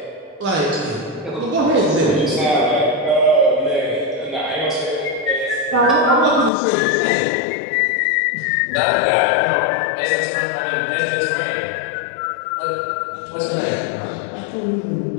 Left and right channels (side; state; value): right; drops out; at 6.5 s